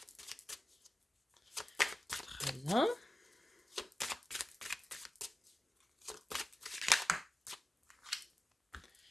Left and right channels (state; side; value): normal; both; correlation 0.95